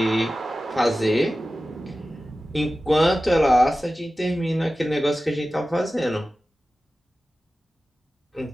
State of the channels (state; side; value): normal; both; correlation 0.95